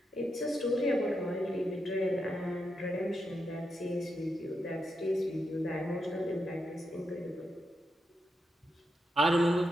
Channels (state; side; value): normal; both; correlation 0.84